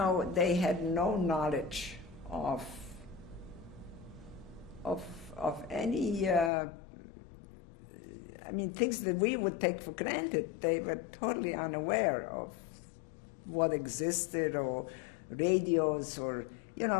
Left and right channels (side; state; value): right; drops out; at 6.5 s